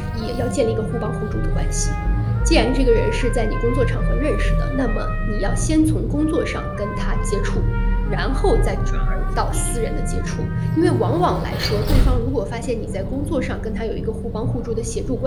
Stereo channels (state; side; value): identical; both; correlation 1.00